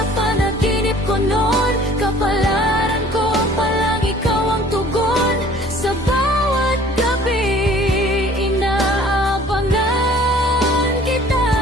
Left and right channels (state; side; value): normal; both; correlation 0.52